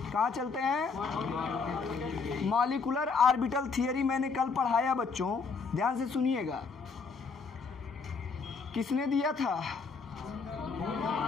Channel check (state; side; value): quieter; right; 4.9 dB